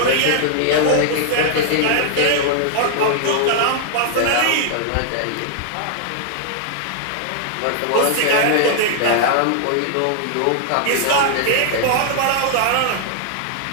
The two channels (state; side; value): different; both; correlation 0.00